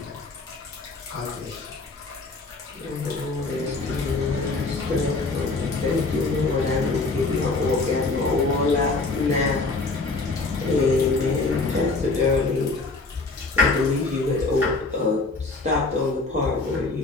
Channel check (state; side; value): quieter; right; 3.6 dB